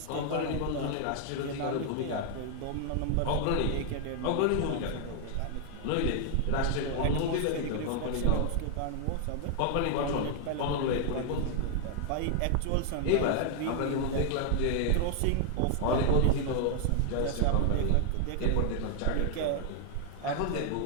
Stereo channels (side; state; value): both; different; correlation 0.00